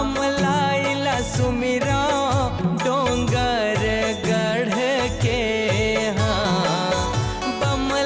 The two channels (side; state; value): both; identical; correlation 1.00